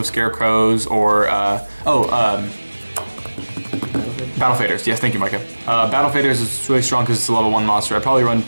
Scarecrows or Battle Faders. Yes, thank you, Micah. Battle Faders is really strong because it's a level 1 monster. I'd probably run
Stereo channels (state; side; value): inverted; both; correlation -1.00